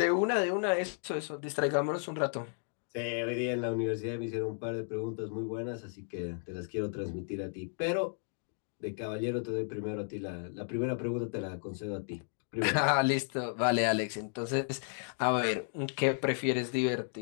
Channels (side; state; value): right; silent; 55 dB below the other